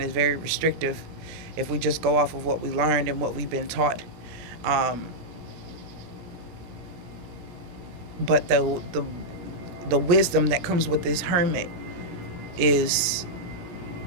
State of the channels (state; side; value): late; left; 17 ms